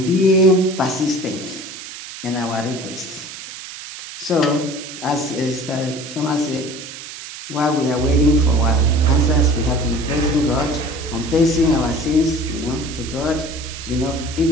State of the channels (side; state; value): right; noise; hiss, 12 dB below the sound